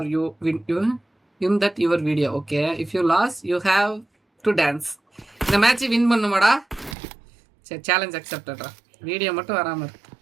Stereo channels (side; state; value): left; drops out; at 7.0 s